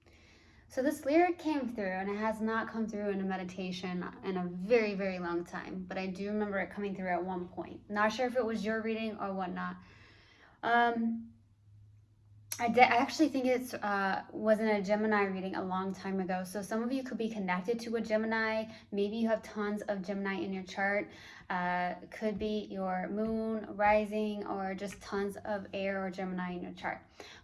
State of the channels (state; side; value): identical; both; correlation 1.00